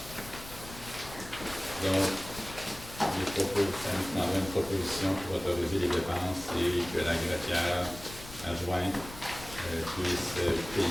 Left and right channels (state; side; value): noise; left; rumble, 15 dB below the sound